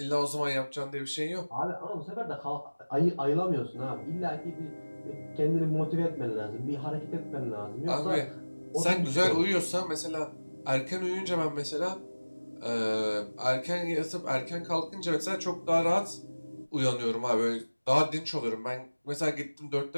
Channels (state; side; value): inverted; both; correlation -1.00